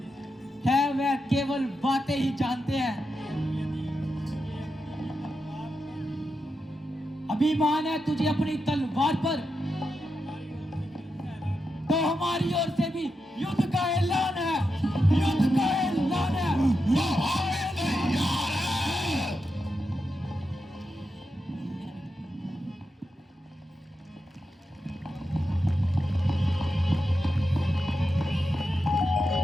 वह केवल बातें ही जानते हैं। अभिमान है तुझे अपनी तलवार पर, तो हमारी ओर से भी युद्ध का ऐलान है। युद्ध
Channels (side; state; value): both; normal; correlation 0.87